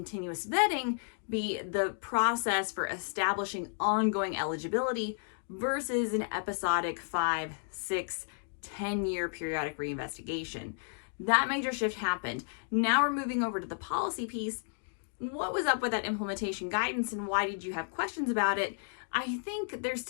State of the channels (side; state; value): right; silent; digital silence